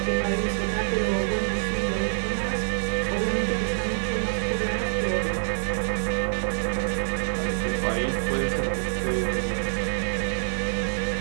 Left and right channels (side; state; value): left; silent; digital silence